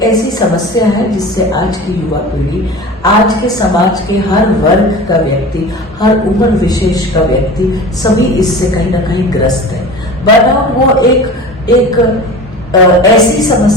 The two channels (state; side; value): normal; both; correlation 0.36